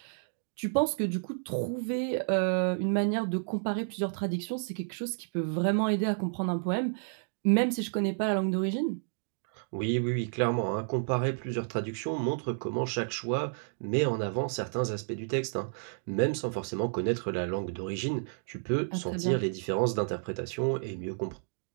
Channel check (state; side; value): silent; left; digital silence